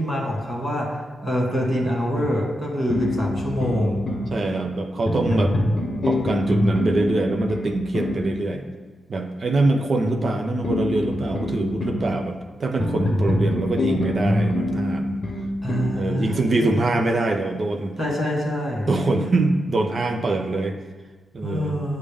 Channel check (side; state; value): both; normal; correlation 0.86